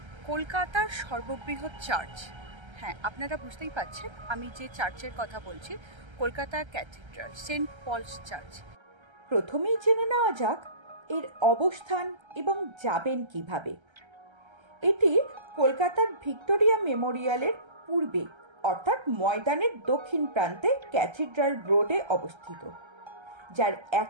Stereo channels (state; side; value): late; left; 1.3 ms